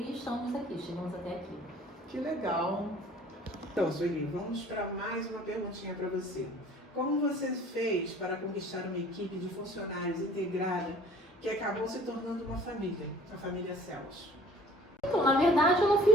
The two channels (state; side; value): normal; both; correlation 0.51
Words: estamos aqui, chegamos até aqui. Que legal. Então, Sueli, vamos para mais uma perguntinha para você. Como você fez para conquistar uma equipe de funcionários integrada que acabou se tornando uma família, a família Céus? Então, na verdade, eu não